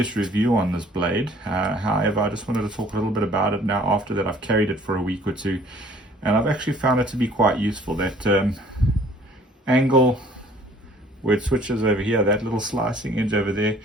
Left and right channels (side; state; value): both; normal; correlation 0.55